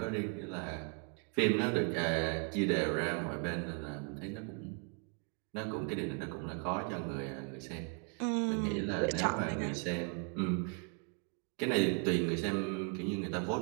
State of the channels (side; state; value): left; quieter; 38.4 dB